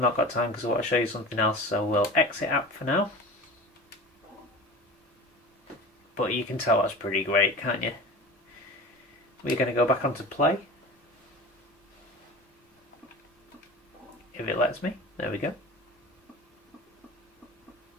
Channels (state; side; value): normal; both; correlation 0.35